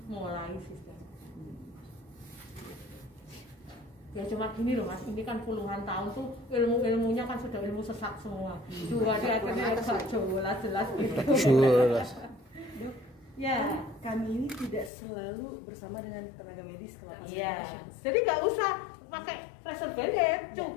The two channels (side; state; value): right; drops out; at 14.9 s